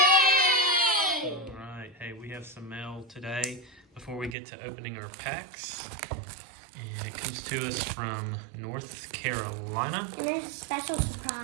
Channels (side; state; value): left; drops out; at 4.4 s